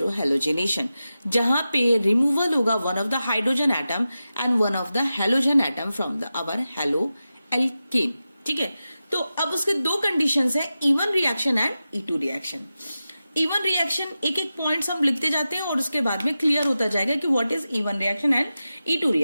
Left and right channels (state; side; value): inverted; both; correlation -0.92